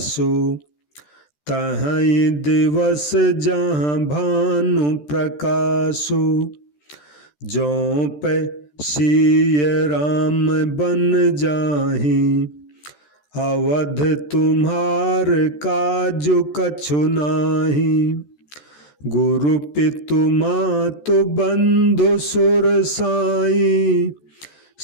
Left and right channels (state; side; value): late; right; 14 ms